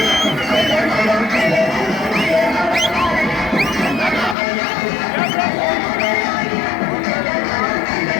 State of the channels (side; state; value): right; drops out; at 4.4 s